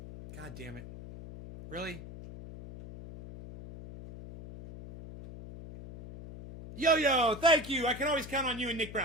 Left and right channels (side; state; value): left; noise; hum, 13 dB below the sound